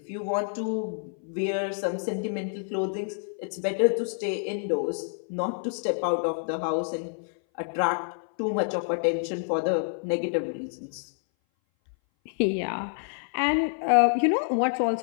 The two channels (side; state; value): right; silent; 58 dB below the other